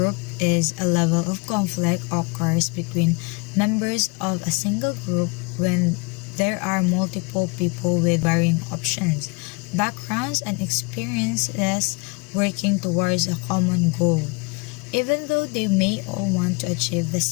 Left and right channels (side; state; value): right; quieter; 29.0 dB